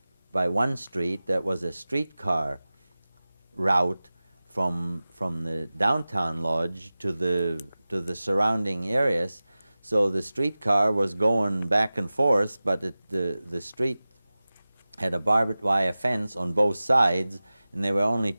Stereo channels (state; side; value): inverted; both; correlation -0.97